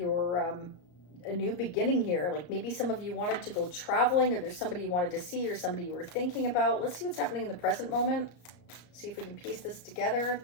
a new beginning here. Like maybe some of you wanted to go traveling, or there's somebody you wanted to see, or somebody you were thinking about. Let's see what's happening in the present moment. See if we can piece this together.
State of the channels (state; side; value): late; right; 34 ms